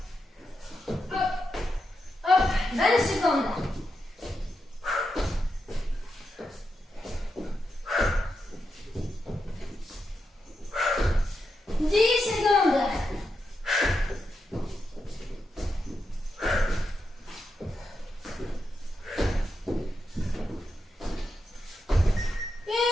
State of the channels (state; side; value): normal; both; correlation 0.86